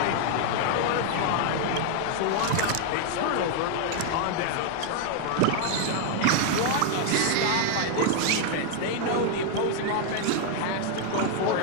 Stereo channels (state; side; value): different; both; correlation 0.00